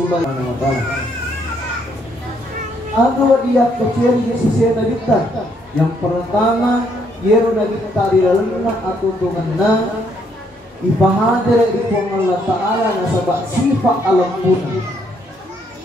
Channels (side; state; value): both; normal; correlation 0.71